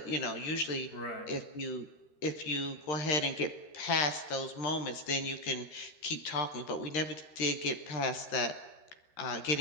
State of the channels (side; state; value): right; late; 13 ms